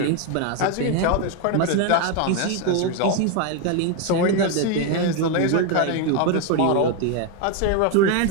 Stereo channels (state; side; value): different; both; correlation 0.01